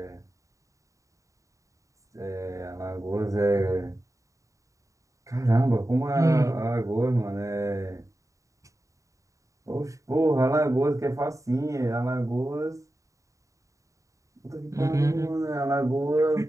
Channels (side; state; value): left; late; 0.16 ms